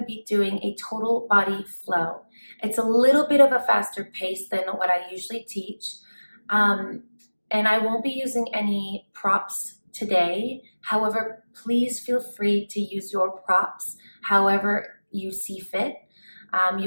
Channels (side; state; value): both; inverted; correlation -1.00